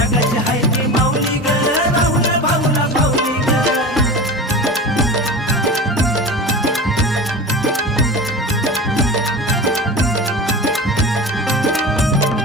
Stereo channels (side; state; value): both; normal; correlation 0.31